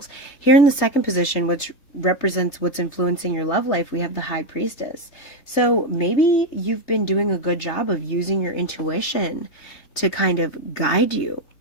Here in the second position, which represents what's influencing your love life, we have the High Priestess. So maybe you've been doing a good job of using your intuition to kind of guide you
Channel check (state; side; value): late; right; 3.3 ms